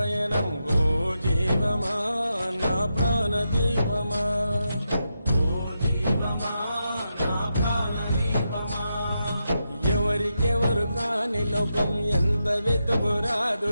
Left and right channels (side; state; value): both; inverted; correlation -0.86